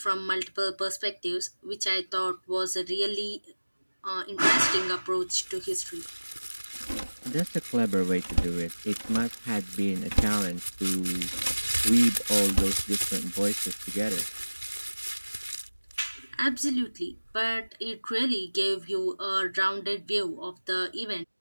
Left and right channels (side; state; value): both; inverted; correlation -1.00